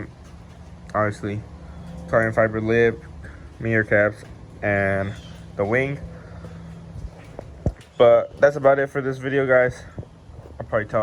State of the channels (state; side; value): identical; both; correlation 1.00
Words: obviously, carbon fiber lip, mirror caps, and the wing. But that's about it for this video, guys. I'll probably